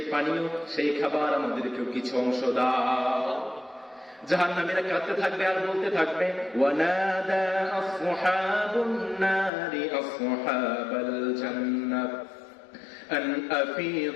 পানীয় সেই খাবার আমাদেরকেও কিছু অংশ দাও। জাহান্নামীরা কাঁদতে থাকবে আর বলতে থাকবে, ওয়ানাদা আসহাবুন নারি আসহাবাল জান্নাহ আন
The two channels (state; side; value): drops out; right; at 9.5 s